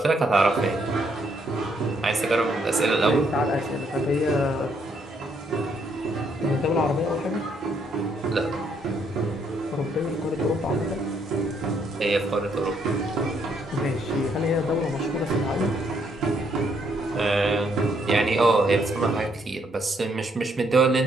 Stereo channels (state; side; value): normal; both; correlation 0.72